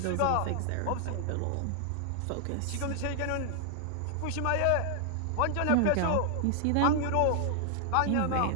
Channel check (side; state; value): both; different; correlation 0.00